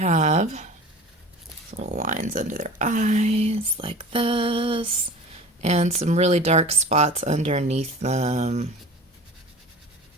little lines under their eyes like this, and some really dark spots underneath them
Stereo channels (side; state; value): both; normal; correlation 0.39